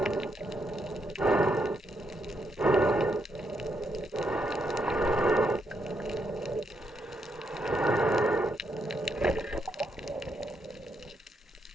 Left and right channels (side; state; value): both; normal; correlation 0.79